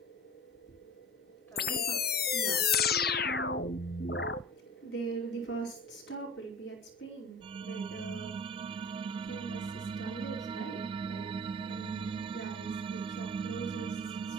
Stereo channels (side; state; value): both; normal; correlation 0.38